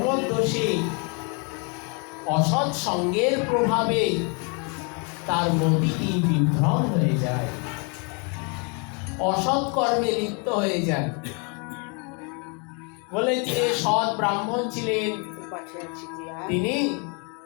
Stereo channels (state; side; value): quieter; right; 34.8 dB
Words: অসৎ সঙ্গের প্রভাবে তার মতিটি বিভ্রম হয়ে যায়, অসৎ কর্মে লিপ্ত হয়ে যায়। বলে যে সৎ ব্রাহ্মণ ছিলেন, তিনি